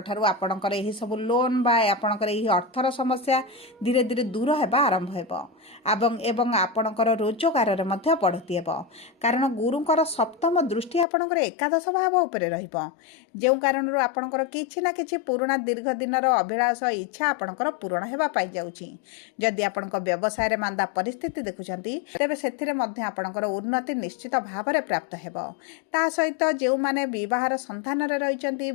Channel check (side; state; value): right; drops out; at 11.1 s